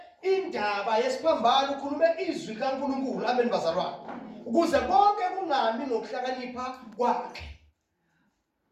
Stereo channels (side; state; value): both; identical; correlation 1.00